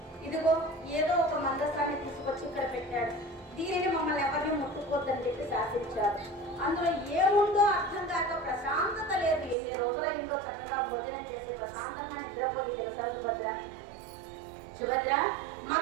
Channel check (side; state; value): left; drops out; at 9.6 s